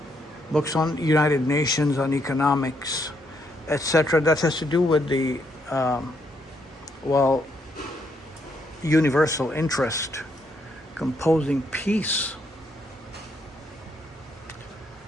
books on United Nations, on economics, etc. That has to do with the, universal interest composing peace.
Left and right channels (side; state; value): both; normal; correlation 0.75